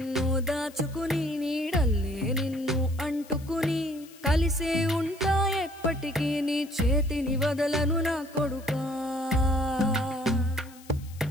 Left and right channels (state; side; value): noise; left; hiss, 23 dB below the sound